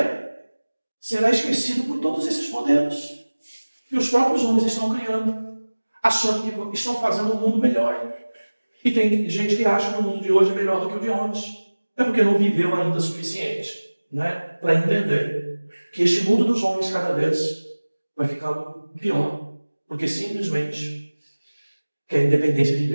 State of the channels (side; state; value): both; inverted; correlation -1.00